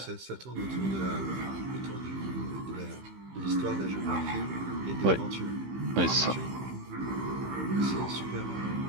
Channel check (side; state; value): left; late; 15 ms